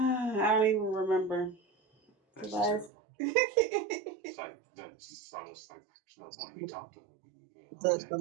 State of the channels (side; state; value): left; drops out; at 2.9 s